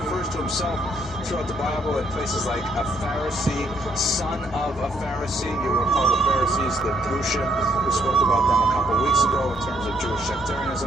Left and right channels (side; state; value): both; normal; correlation 0.70